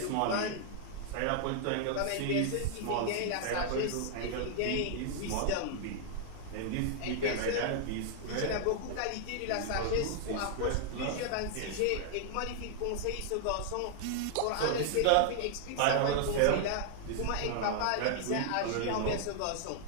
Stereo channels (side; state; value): both; different; correlation 0.00